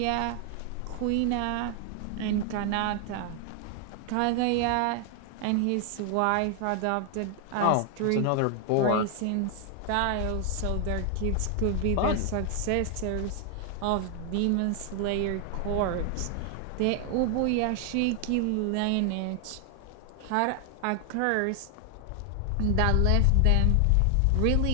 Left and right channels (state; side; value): different; both; correlation 0.00